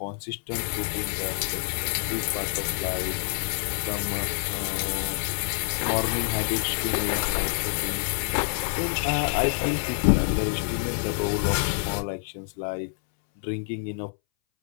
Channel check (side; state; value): right; silent; 60 dB below the other